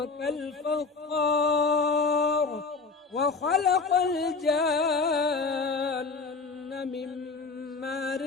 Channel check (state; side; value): quieter; right; 4.4 dB